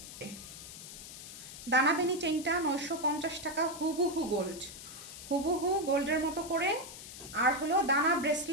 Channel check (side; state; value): left; noise; hiss, 13 dB below the sound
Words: দানাবেনি চেইনটা 950 টাকা, হুবহু গোল্ড, হুবহু গোল্ডের মতো করে। আর হলো দানা